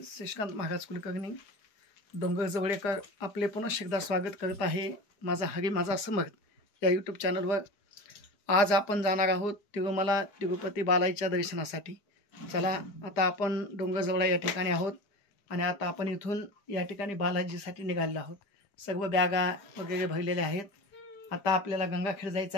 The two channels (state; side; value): late; right; 4.9 ms